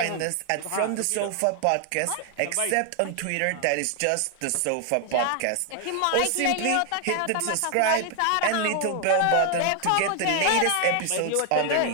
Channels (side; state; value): both; different; correlation 0.00